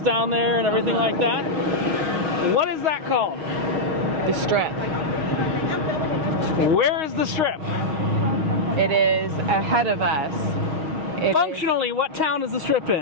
down there and everything like that? What is that called? The Strip. Where is the Strip? It is ahead of us. It Functionally, what town is the Strip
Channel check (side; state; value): left; late; 6.4 ms